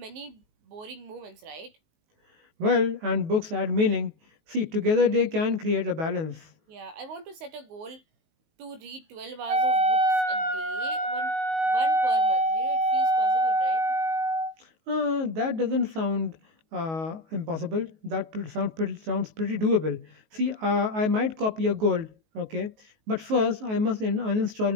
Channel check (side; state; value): left; late; 19 ms